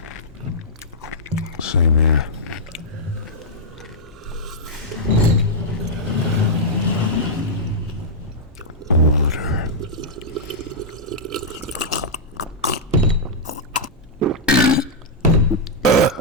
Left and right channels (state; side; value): normal; both; correlation -0.07